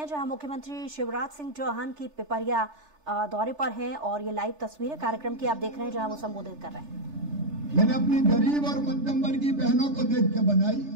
जहां मुख्यमंत्री शिवराज सिंह चौहान की पिपरिया दौरे पर हैं और ये लाइव तस्वीरें कार्यक्रम की आप देख रहे हैं जहां वो संबोधित कर रहे हैं। मैंने अपनी गरीब और मध्यम वर्गीय बहनों को देख के बनाई,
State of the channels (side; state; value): left; late; 3.4 ms